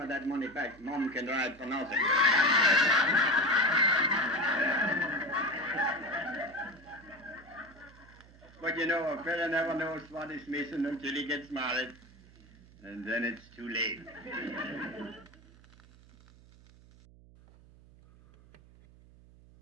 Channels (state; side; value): noise; right; hum, 24 dB below the sound